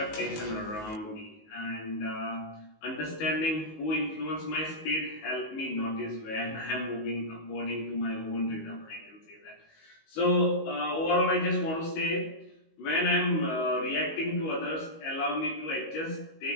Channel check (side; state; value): right; late; 19 ms